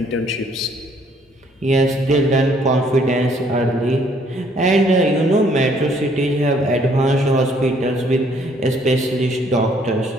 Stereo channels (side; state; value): both; normal; correlation 0.64